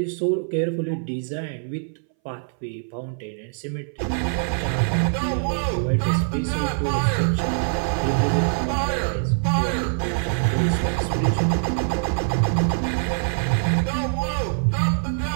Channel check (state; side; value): silent; left; 63 dB below the other